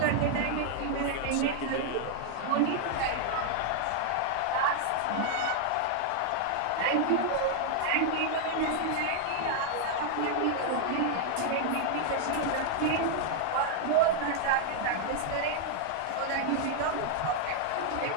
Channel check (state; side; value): different; both; correlation 0.00